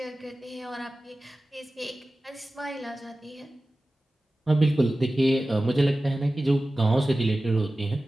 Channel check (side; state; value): both; normal; correlation 0.96